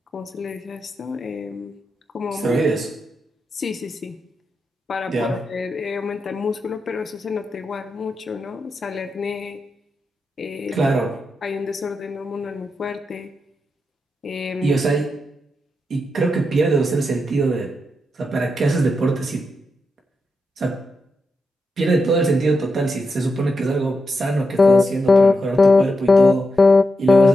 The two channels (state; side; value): normal; both; correlation 0.86